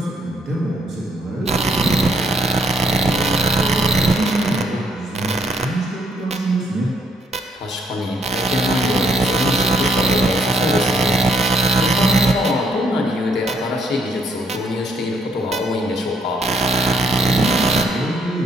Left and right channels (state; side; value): normal; both; correlation 0.70